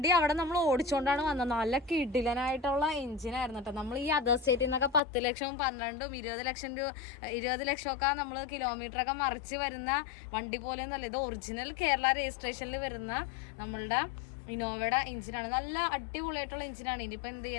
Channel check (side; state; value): right; drops out; at 5.0 s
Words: അവിടെ നമ്മൾ ഓടിച്ചോണ്ടാണ് വന്നത്. നല്ല കിടിലനായിട്ടുള്ള എഞ്ചിനായിരുന്നു കേട്ടോ. നമ്മൾ ഈ അതർ സ്റ്റേറ്റിൽ നിന്നൊക്കെ 10 ലക്ഷവും 12ഉം 20 ലക്ഷമൊക്കെ നമ്മൾ കിലോമീറ്ററൊക്കെ മറിച്ച് വരുന്ന വണ്ടി പോലെ ഒന്നല്ല. ഇത് ഒറിജിനൽ കേരള രജിസ്ട്രേഷനിൽ വരുന്ന നമ്മളുടെ ഇന്നോവയുടെ എഞ്ചിനാണ്. നല്ല അടിപൊളിയായിട്ടുള്ള എഞ്ചിനാണ്. ഇനിയിപ്പോൾ എന്ത്